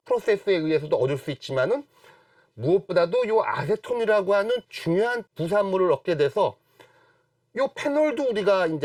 프로세스에 의해서도 얻을 수 있지만은 무엇보다도 이 아세톤이라고 하는 중요한 부산물을 얻게 돼서 이 페놀도 우리가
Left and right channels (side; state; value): both; identical; correlation 1.00